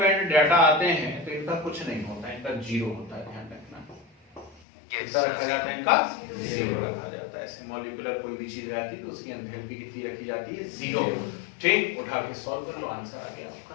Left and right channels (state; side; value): drops out; right; at 4.6 s